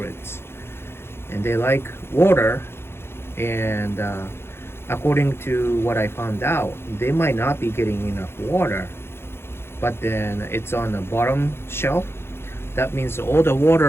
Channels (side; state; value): right; late; 0.12 ms